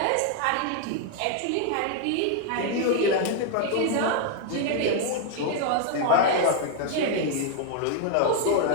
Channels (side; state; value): both; different; correlation 0.00